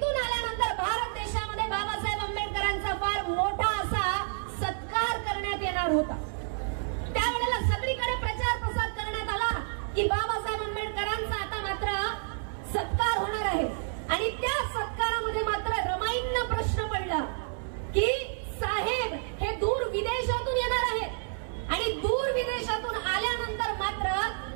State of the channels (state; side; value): silent; left; 58 dB below the other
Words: आल्यानंतर भारत देशामध्ये बाबासाहेब आंबेडकरांचा फार मोठा असा सत्कार करण्यात येणार होता. त्यावेळेला सगळीकडे प्रचार प्रसार करण्यात आला की बाबासाहेब आंबेडकरांचा आता मात्र सत्कार होणार आहे. आणि त्या सत्कारामध्ये मात्र रमाईंना प्रश्न पडला की साहेब हे दूर विदेशातून येणार आहेत आणि दूर विदेशातून आल्यानंतर मात्र